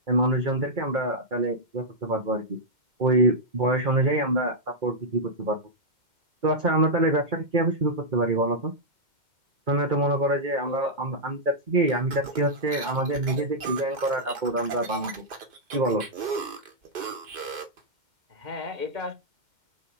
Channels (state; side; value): late; left; 2.1 ms